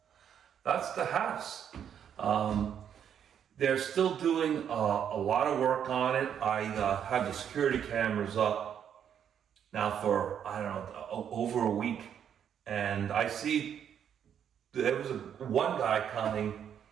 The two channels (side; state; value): left; quieter; 8.7 dB